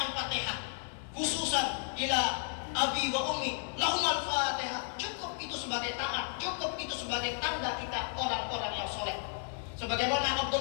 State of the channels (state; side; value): silent; right; 56 dB below the other